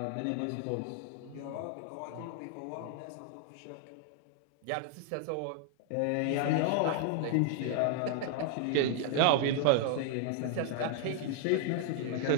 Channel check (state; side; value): different; both; correlation 0.00